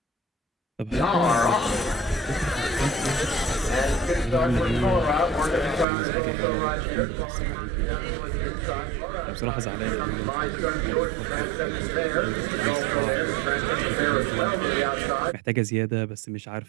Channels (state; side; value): drops out; left; at 5.9 s